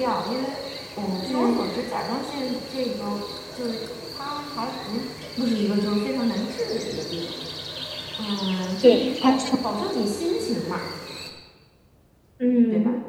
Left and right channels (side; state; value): both; identical; correlation 1.00